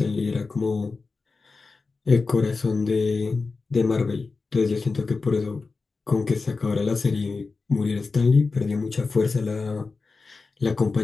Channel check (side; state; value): right; quieter; 4.1 dB